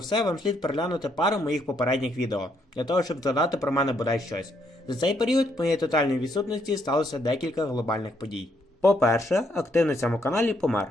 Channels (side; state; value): both; normal; correlation 0.73